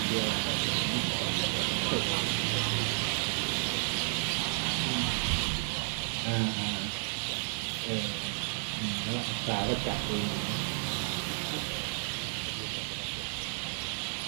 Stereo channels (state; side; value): silent; left; 56 dB below the other